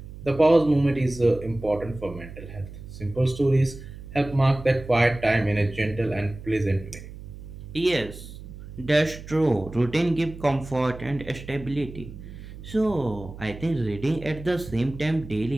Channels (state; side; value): noise; right; hum, 14 dB below the sound